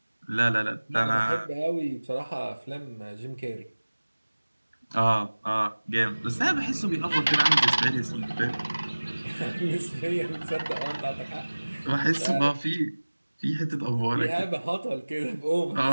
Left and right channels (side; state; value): both; inverted; correlation -1.00